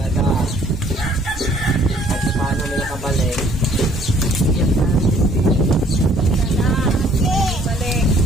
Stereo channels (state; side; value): normal; both; correlation 0.59